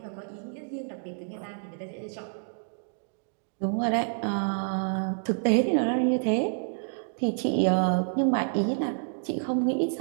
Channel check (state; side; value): silent; left; digital silence